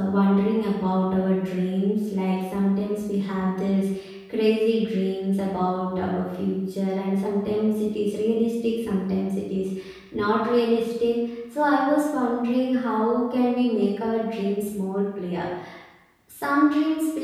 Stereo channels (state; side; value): identical; both; correlation 1.00